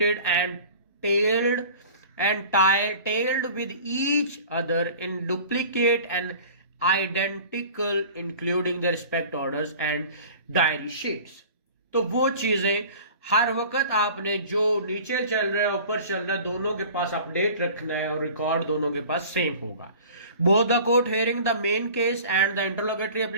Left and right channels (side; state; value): both; inverted; correlation -0.43